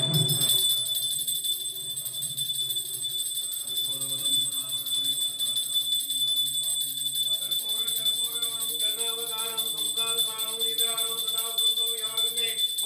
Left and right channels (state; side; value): normal; both; correlation 0.95